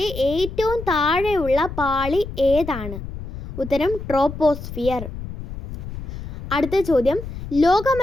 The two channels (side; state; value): left; noise; rumble, 10 dB below the sound